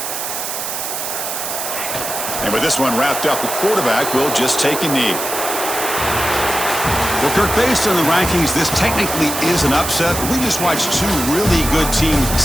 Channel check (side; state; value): right; noise; hiss, 4 dB below the sound